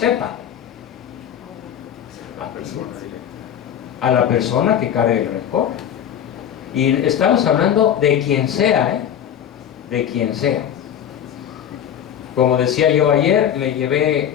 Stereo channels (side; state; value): right; quieter; 9.5 dB